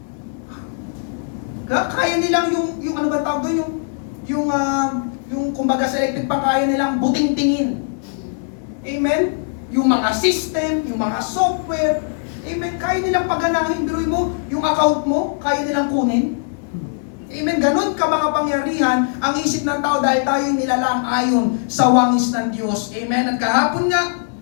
Kaya nilang yung ano ba tawag doon? Yung kumbaga sa electric pa, kaya nilang buting-tingin. Amen? Yung mga system, yung mga software, amen, kaya nilang paganahin. Biruin mo, yung account mo, kaya nilang kunin. Amen, ganun ka mga pangyarihan ang isip ng tao dahil tayo nilalang ayon sa wangis ng Diyos. Amen, at kahapon nga,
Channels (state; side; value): silent; right; 66 dB below the other